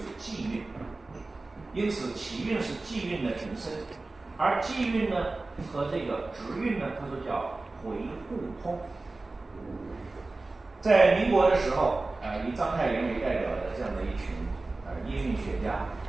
季韵，因此齐韵是季韵的平声，而季韵呢和这个直韵呢，他说叫回互通。在民国的时候，以章太炎为代表的这样的一群音韵学家，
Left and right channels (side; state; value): left; quieter; 3.3 dB